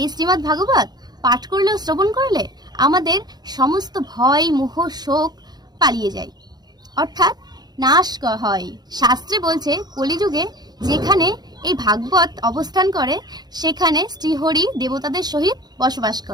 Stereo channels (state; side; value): late; left; 0.20 ms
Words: শ্রীমদ্ ভাগবত পাঠ করলেও শ্রবণ করলে আমাদের সমস্ত ভয় মোহ শোক পালিয়ে যায়, অর্থাৎ নাশ হয়। শাস্ত্রে বলছে কলিযুগে যেখানে এই ভাগবত অবস্থান করে সেখানে শ্রীহরি দেবতাদের সহিত বসবাস